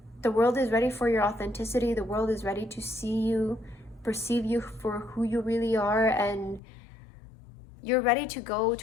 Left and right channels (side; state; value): right; drops out; at 6.6 s